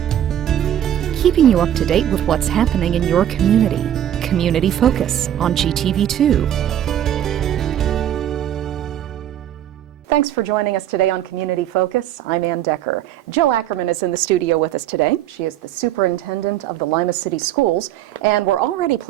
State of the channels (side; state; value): left; quieter; 11.2 dB